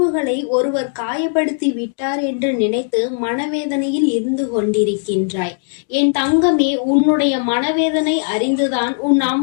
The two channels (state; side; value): silent; right; 61 dB below the other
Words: ஒருவர் காயப்படுத்தி விட்டார் என்று நினைத்து மனவேதனையில் இருந்து கொண்டிருக்கின்றாய். என் தங்கமே, உன்னுடைய மனவேதனை அறிந்துதான் உன்